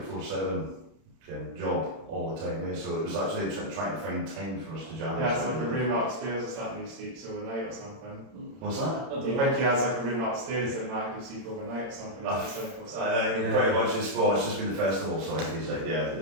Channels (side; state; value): left; late; 31 ms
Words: job all the time, so it was actually trying to find time for us to jam. Yeah, it's like a room upstairs or something, he sleeps overnight or something. What's that? Do you think he has like a room upstairs that Matt can sleep overnight or something? Pretty much it's just been the festival, so I think he's like,